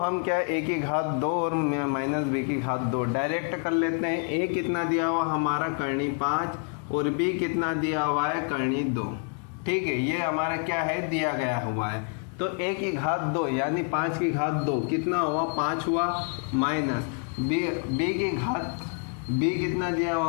क्या a की घात 2 और माइनस b की घात 2 डायरेक्ट कर लेते हैं। a कितना दिया हुआ हमारा करनी 5 और b कितना दिया हुआ है करनी 2, ठीक है। ये हमारा क्या है दिया गया हुआ है। तो a की घात 2 यानी 5 की घात 2 कितना हुआ 5 हुआ, माइनस b की घात b कितना दिया हुआ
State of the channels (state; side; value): quieter; right; 39.6 dB